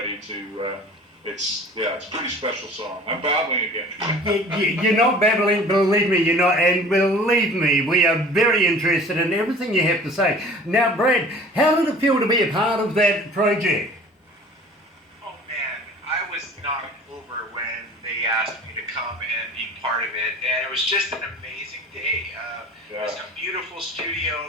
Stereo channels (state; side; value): normal; both; correlation 0.45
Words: It's a pretty special song. I'm babbling again. You're not babbling, believe me, you're not, and believe me, we are very interested in everything you have to say. Now, Brad, how did it feel to be a part of that project? Oh man, I was knocked over when they asked me to come and be part of it, and it was just an amazing day. It was a beautiful